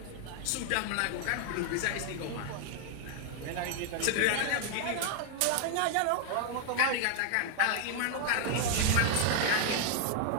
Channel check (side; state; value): both; different; correlation 0.00